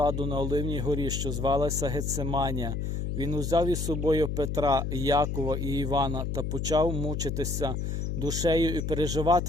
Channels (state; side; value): noise; left; hum, 2 dB below the sound